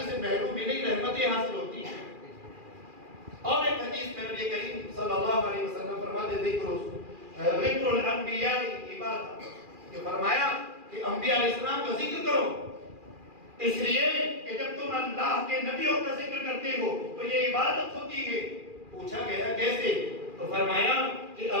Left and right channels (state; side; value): late; left; 2.4 ms